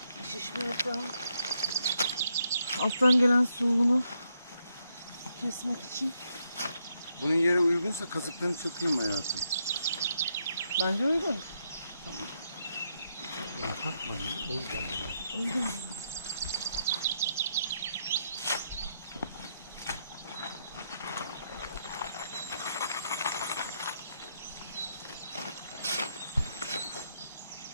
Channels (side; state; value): both; inverted; correlation -0.79